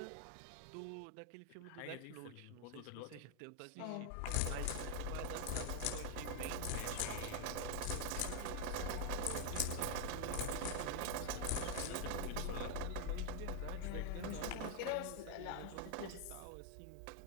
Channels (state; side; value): different; both; correlation 0.00